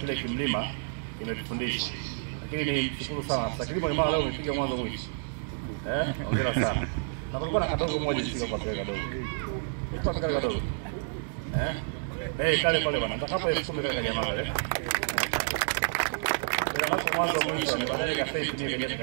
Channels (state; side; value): silent; left; digital silence